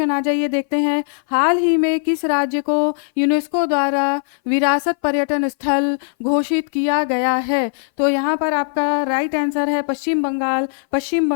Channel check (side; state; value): right; silent; 60 dB below the other